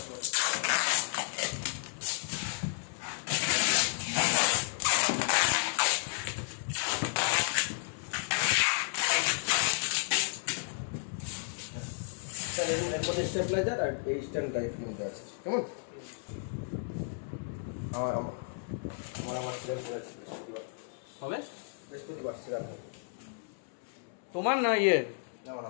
স্টেবলাইজার আর এই স্ট্যান্ড টাইপ মধ্যে আছে, কেমন? আমার আমার আমার সিরিয়াল করেছি হবে বৃহস্পতিবার সিরিয়াল তোমার না ইয়ে? আমার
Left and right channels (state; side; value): silent; right; 56 dB below the other